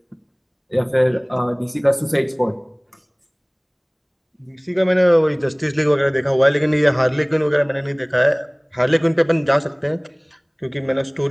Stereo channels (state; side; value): identical; both; correlation 1.00